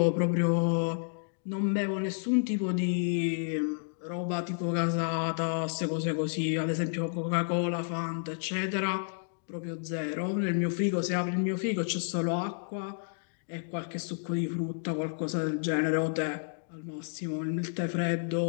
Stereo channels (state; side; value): silent; right; digital silence